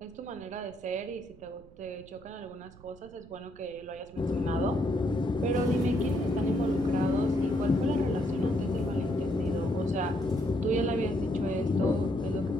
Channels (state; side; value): noise; right; rumble, 23 dB below the sound